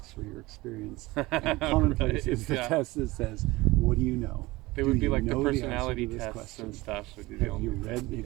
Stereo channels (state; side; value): quieter; left; 20.6 dB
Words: for your experience. And commonplace is the test that says, what do you know? They would be like the personality tests and stuff. Have you